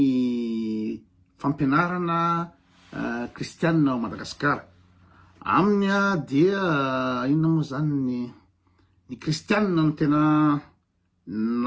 fampianarana kristianina ao Madagasikara aminy dia inona moa zany ny kristianina no tena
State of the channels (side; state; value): both; identical; correlation 1.00